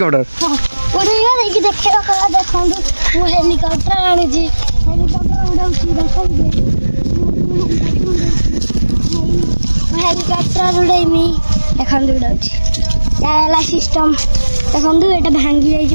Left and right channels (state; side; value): inverted; both; correlation -1.00